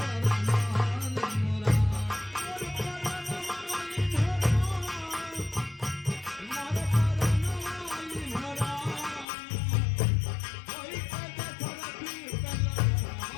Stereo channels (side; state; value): right; drops out; at 9.2 s